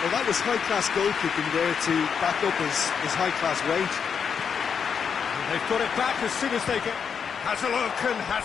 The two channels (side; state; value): right; quieter; 6.8 dB